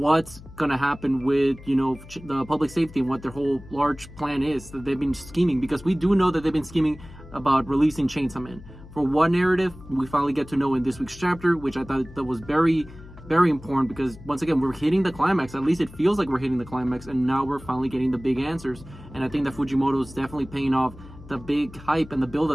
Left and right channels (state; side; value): noise; left; hum, 18 dB below the sound